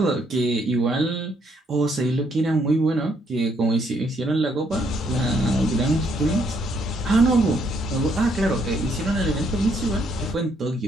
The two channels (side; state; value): both; normal; correlation 0.71